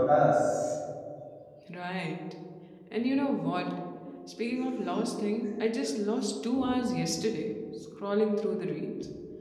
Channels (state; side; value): identical; both; correlation 1.00